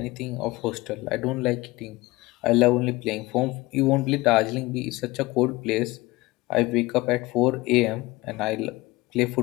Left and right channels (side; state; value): right; quieter; 20.8 dB